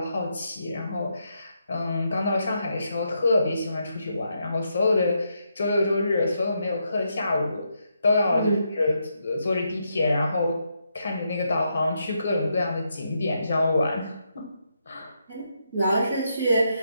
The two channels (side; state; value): both; inverted; correlation -0.81